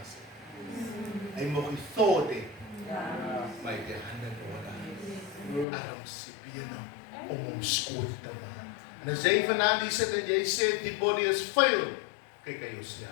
nie. Hy mag die thought hê, maar die hande nodig, arms, bene, om hom skoon te maak. En as jy vanaand hier sit en jy sê die body is vuil, kyk aan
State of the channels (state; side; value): drops out; right; at 5.7 s